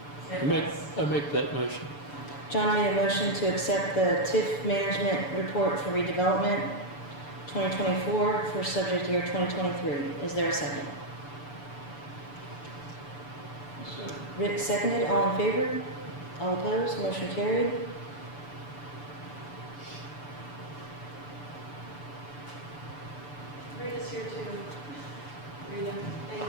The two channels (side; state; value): right; late; 6.9 ms